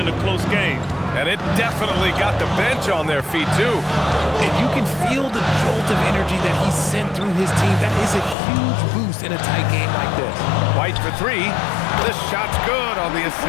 a close game. And it definitely got the bench on their feet, too. And you can feel the jolt of energy that he sent through his team. That is a huge boost in a tight game like this. White for 3. This shot's good on the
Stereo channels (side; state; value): right; drops out; at 8.3 s